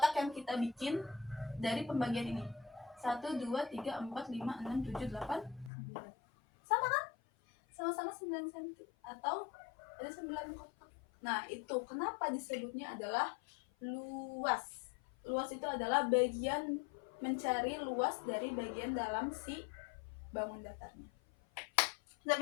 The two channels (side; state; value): right; drops out; at 5.7 s